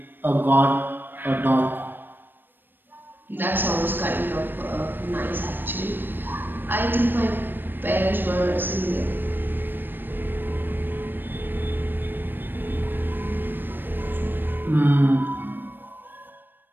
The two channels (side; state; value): left; late; 0.094 ms